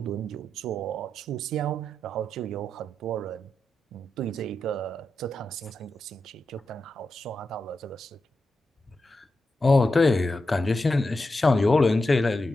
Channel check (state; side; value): normal; both; correlation 0.88